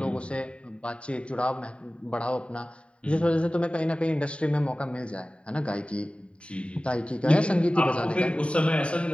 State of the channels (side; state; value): right; late; 0.059 ms